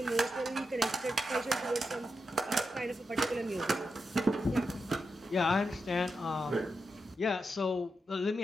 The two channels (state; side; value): normal; both; correlation 0.87